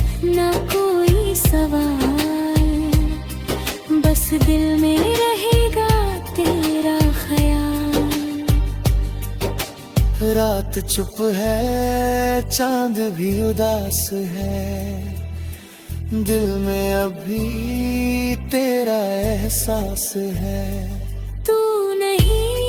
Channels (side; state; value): both; identical; correlation 1.00